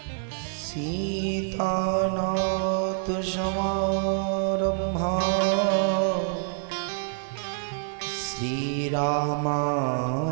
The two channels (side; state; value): left; silent; digital silence